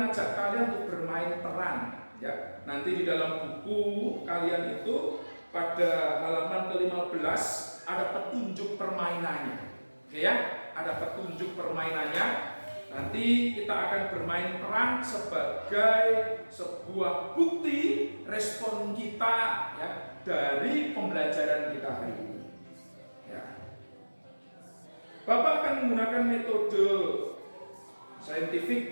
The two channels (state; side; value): inverted; both; correlation -1.00